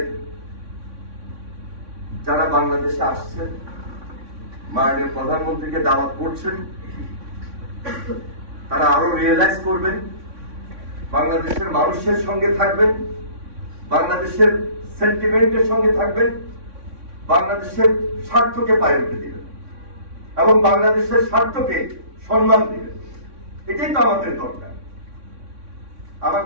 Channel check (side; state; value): left; late; 3.6 ms